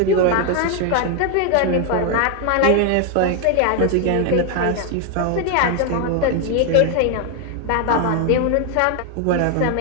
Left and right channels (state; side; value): different; both; correlation 0.01